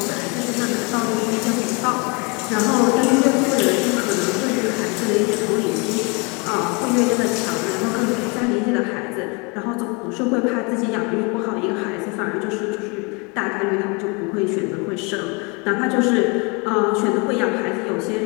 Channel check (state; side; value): quieter; right; 30.5 dB